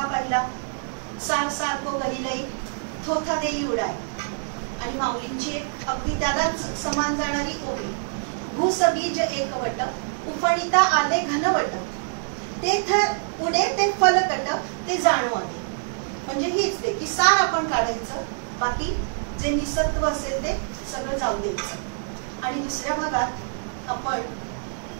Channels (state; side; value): silent; left; digital silence